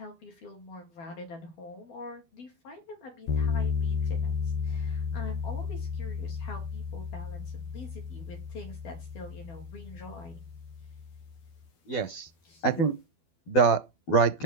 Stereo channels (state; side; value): late; right; 12 ms